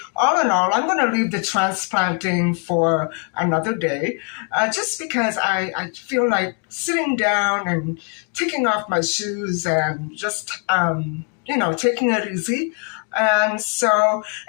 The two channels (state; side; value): quieter; right; 38.3 dB